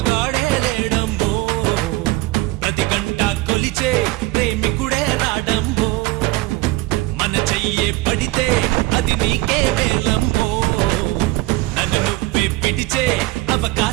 మగాడే లేడమ్మో ప్రతి గంట కొలిచే ప్రేమికుడే రాడమ్మో మన చెయ్యే పడితే అది నీకే వేలమ్మో నన్ను నువ్వే పిడిచే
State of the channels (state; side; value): quieter; left; 20.0 dB